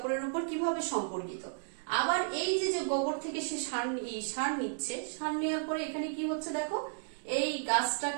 উপর কিভাবে সম্পর্কিত। আবার এই যে গোবর থেকে সে সার নিচ্ছে, সার নেওয়ার পরে এখানে কি হচ্ছে দেখো, এই গাছটা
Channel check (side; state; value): left; silent; digital silence